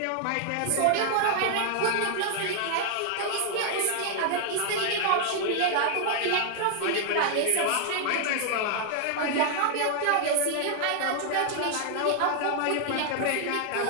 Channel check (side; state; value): both; different; correlation 0.00